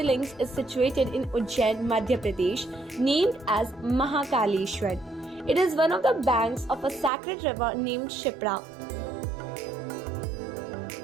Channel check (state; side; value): drops out; left; at 7.1 s